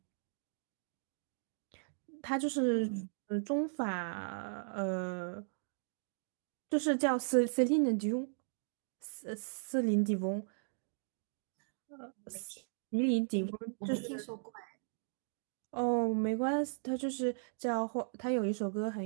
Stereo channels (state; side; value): silent; left; digital silence